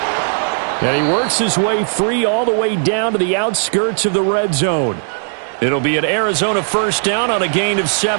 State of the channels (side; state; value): left; silent; 67 dB below the other